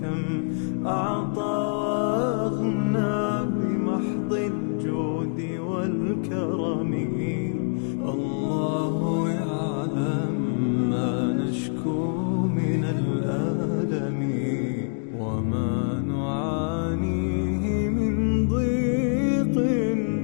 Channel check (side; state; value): right; silent; digital silence